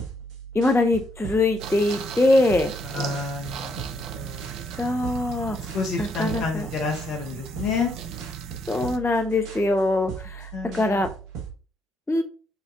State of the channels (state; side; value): normal; both; correlation 0.75